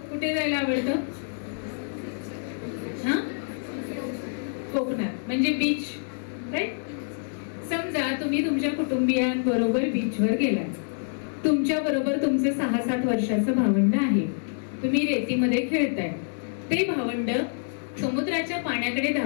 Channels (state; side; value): silent; right; digital silence